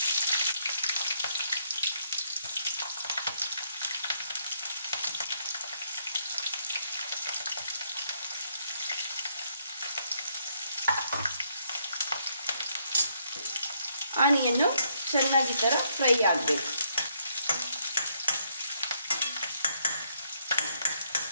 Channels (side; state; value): both; inverted; correlation -0.72